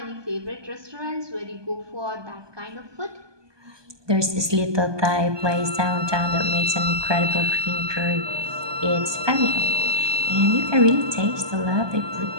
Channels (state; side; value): late; left; 1.2 ms